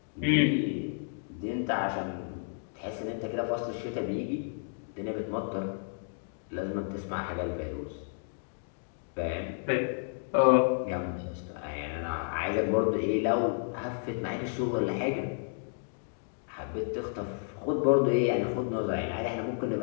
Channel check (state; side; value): silent; right; digital silence